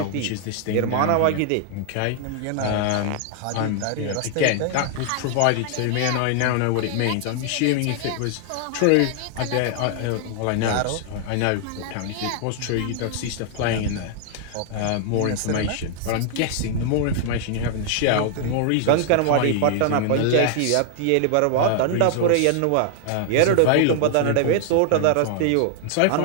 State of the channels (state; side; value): different; both; correlation 0.00